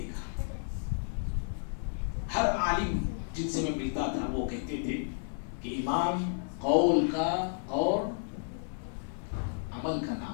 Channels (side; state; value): right; silent; digital silence